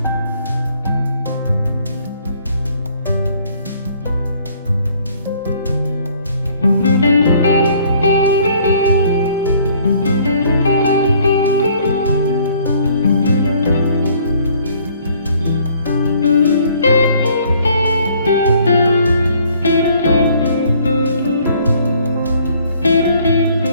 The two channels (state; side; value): inverted; both; correlation -0.60